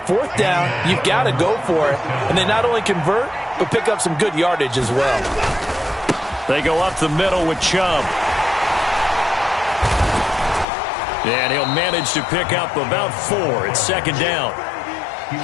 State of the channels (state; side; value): drops out; right; at 10.7 s